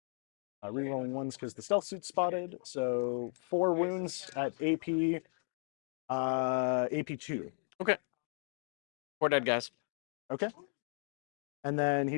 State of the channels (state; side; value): silent; right; 54 dB below the other